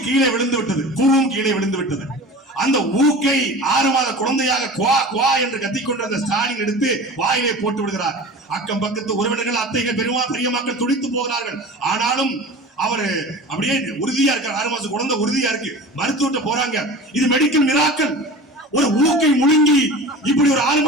கீழே விழுந்து விட்டது. பூவும் கீழே விழுந்து விட்டது. அந்த ஊக்கை 6 மாத குழந்தையாக குவா குவா என்று கத்திக்கொண்டிருந்த ஸ்டாலின் எடுத்து வாயிலே போட்டு விடுகிறார். அக்கம் பக்கத்து உறவினர்கள், அத்தைகள், பெரிய மக்கள் துடித்து போகிறார்கள். ஆனாலும் அவரு அப்படியே உறுதியா இருக்கார். 6 மாசம் குழந்தை உறுதியா இருக்கு. மருத்துவத்தை போறாங்க. இது மெடிக்கல் மிராக்கல். ஒரு ஊக்கை முழுங்கி இப்படி ஒரு 6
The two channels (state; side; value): normal; both; correlation 0.36